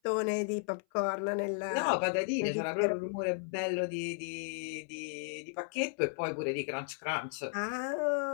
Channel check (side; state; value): right; silent; 55 dB below the other